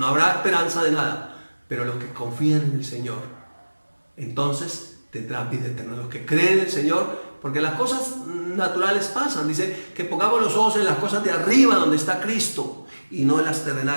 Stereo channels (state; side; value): inverted; both; correlation -1.00